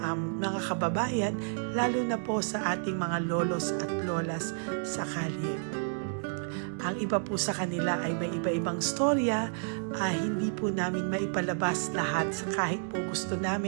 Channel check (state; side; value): silent; left; digital silence